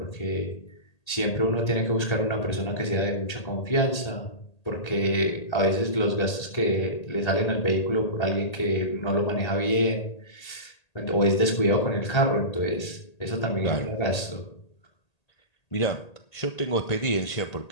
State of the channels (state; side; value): late; right; 1.8 ms